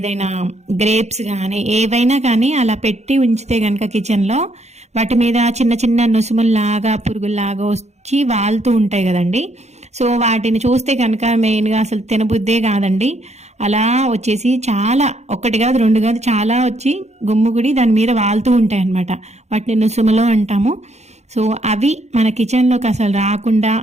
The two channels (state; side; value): late; left; 0.32 ms